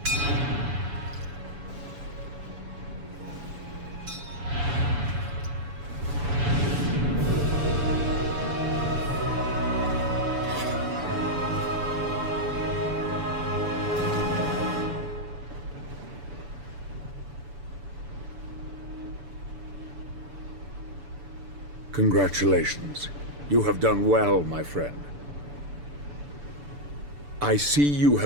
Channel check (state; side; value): late; left; 6.9 ms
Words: Congratulations. You have done well, my friend. I see you